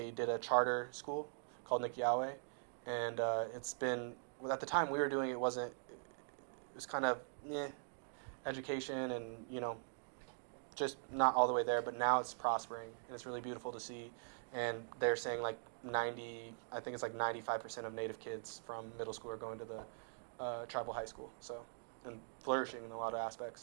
did a charter school called Nikiawe, and it's been well, at the time we were doing it wasn't it was kind of education and just not all the way there, but now it's prospering and it's really beautiful to see. And they're saying like 90, I think it's like 95% of Native kids from middle school are going to the tribal high school. So and flourishing in a lot of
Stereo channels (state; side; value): silent; left; digital silence